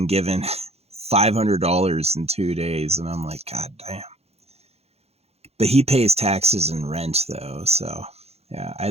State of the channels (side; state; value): left; late; 0.30 ms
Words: given $500 in 2 days, and I'm like, God damn. But he pays taxes and rent though, so yeah,